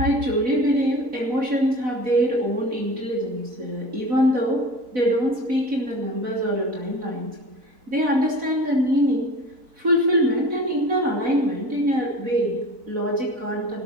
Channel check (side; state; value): left; late; 4.0 ms